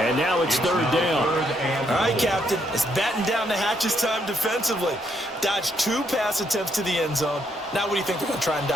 now it's third down. All right, Captain. It's batten down the hatches time defensively. Dodged 2 pass attempts to the end zone. Now what do you think they're going to try and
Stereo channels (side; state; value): both; normal; correlation 0.74